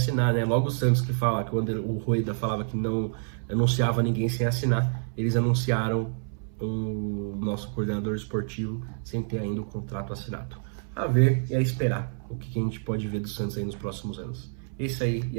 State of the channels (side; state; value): left; silent; 60 dB below the other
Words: né? Logo o Santos que fala, que quando o Rueda falava que não anunciava ninguém sem assinar, eles anunciaram o nosso coordenador esportivo sem ter ainda o contrato assinado. A ver e a esperar o que a gente pode ver do Santos aí nos próximos anos. É isso aí e